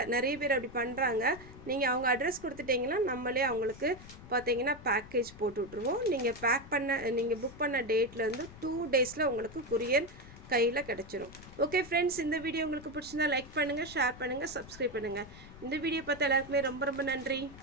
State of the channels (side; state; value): left; noise; rumble, 17 dB below the sound